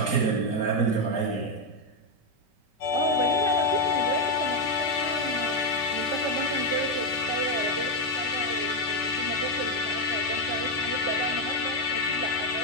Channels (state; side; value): late; right; 5.2 ms